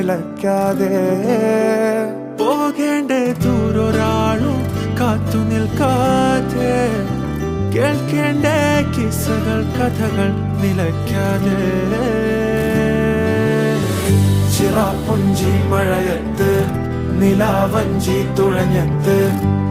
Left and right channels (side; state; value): both; identical; correlation 1.00